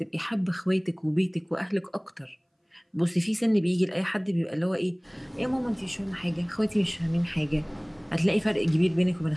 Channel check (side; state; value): both; identical; correlation 1.00